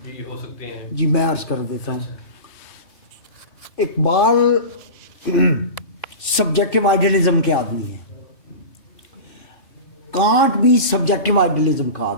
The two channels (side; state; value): right; late; 2.6 ms